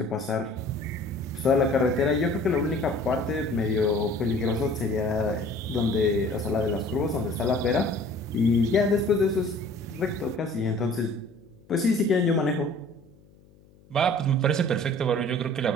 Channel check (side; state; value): left; noise; hum, 28 dB below the sound